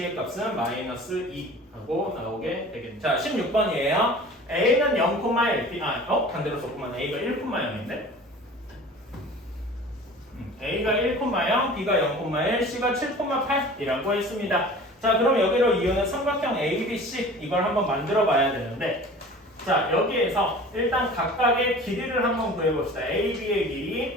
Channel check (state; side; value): normal; both; correlation 0.42